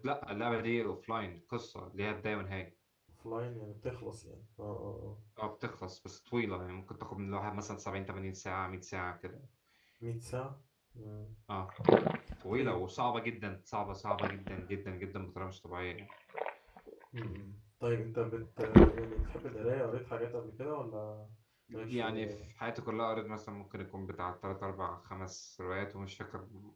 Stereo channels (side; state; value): both; identical; correlation 1.00